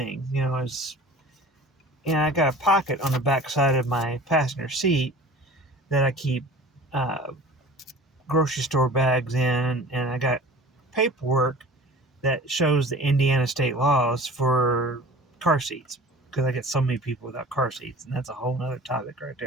And I got a pocket on the back side of my passenger seat that I keep uh, grocery store bags in, and I got paperwork that shows the Indiana state laws for car seats because I get so many people without car seats, and that's a whole other topic right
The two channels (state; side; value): normal; both; correlation 0.42